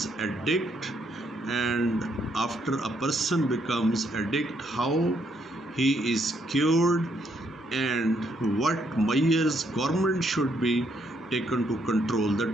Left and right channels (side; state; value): both; normal; correlation 0.73